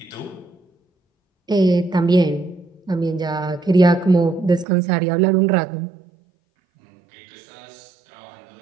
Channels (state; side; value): drops out; left; at 4.7 s